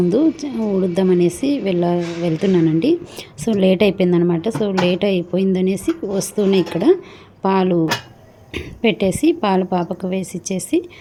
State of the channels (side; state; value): both; identical; correlation 1.00